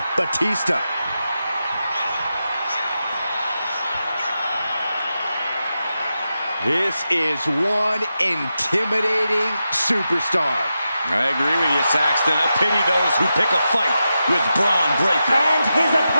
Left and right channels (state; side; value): inverted; both; correlation -0.89